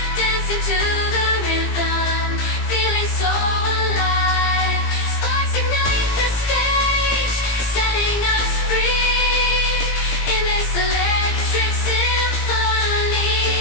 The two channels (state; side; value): late; right; 17 ms